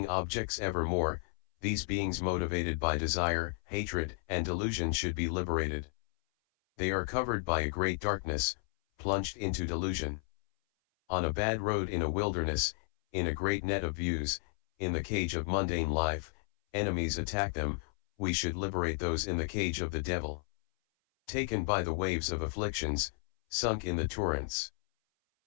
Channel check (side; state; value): right; silent; 56 dB below the other